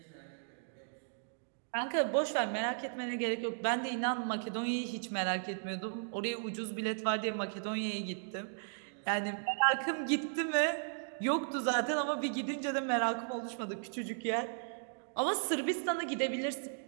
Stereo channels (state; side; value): silent; left; digital silence